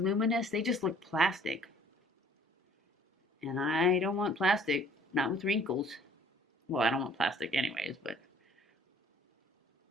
they just look plastic. And I don't want plastic, not with wrinkles. Well, I don't want plastic anyways, but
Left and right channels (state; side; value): normal; both; correlation 0.56